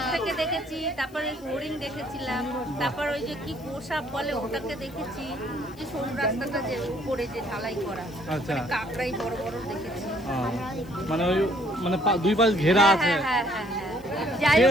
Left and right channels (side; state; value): left; noise; hiss, 27 dB below the sound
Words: থেকে দেখেছি। তারপরে হরিণ দেখেছিলাম। তারপর ওই যে কি গোসাপ বলে ওটাকে দেখেছি। যে সরু রাস্তাটা যে উপরে যে ঢালাই করা, আচ্ছা। কাকড়াই বড় বড় দেখেছি। মানে ওই মানে দুই পাশ ঘেরা আছে। হ্যাঁ হ্যাঁ হ্যাঁ হ্যাঁ। যাই